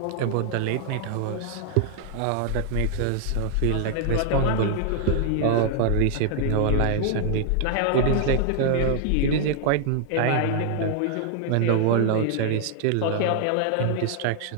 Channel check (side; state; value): both; different; correlation 0.00